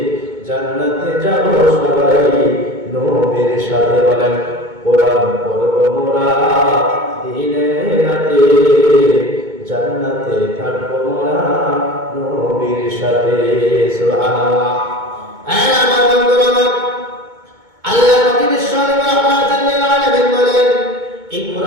জান্নাতে যাব সবাই নবীর সাথে। বলেন কোরআন পড়ব মোরা দিনে রাতে, জান্নাতে থাকব মোরা নবীর সাথে। সুবহানাল্লাহ। আমার বন্ধুরা আমার, আল্লাহ নবী বিশ্বনবী রাহমাতুল লিল আলামিন বলেন এই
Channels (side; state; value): left; late; 2.2 ms